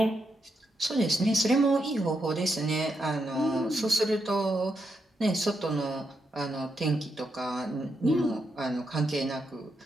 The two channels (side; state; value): both; normal; correlation 0.82